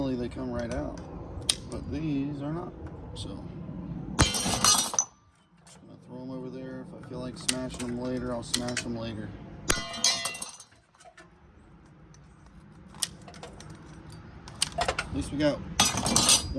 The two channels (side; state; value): both; identical; correlation 1.00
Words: they come right out. But these are not. So just gonna throw them over there. If I feel like smashing them later, I'll smash them later. At least we got